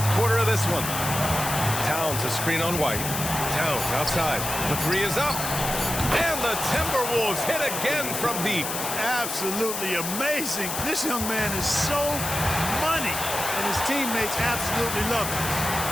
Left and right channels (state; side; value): noise; left; hiss, 4 dB below the sound